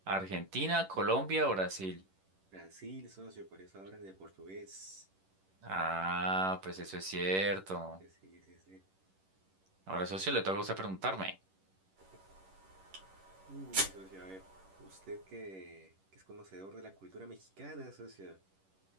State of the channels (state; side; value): late; left; 11 ms